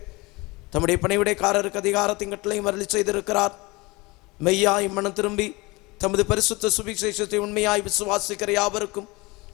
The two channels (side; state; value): right; quieter; 23.9 dB